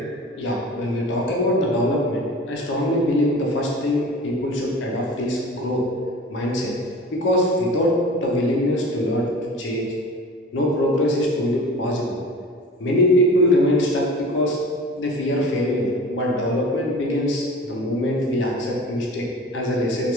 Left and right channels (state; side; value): normal; both; correlation 0.39